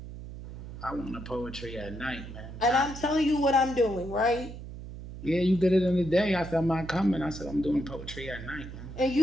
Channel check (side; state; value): right; noise; hum, 11 dB below the sound